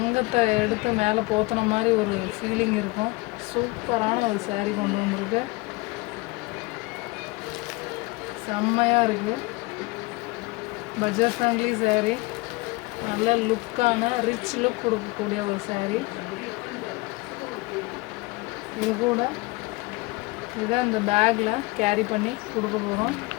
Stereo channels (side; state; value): right; quieter; 23.7 dB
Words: எடுத்து மேலே போத்தின மாதிரி ஒரு ஃபீலிங் இருக்கும். சூப்பரான ஒரு சேரீ கொண்டு வந்திருக்கு. செம்மையாக இருக்குது. பட்ஜெட் ஃப்ரெண்ட்லி சேரீ, நல்ல லுக்கான ரிச் லுக் கொடுக்கக்கூடிய ஒரு சேரீ. இது கூட இதை இந்த பேக்கில் கேரி பண்ணி கொடுக்க போகிறோம்.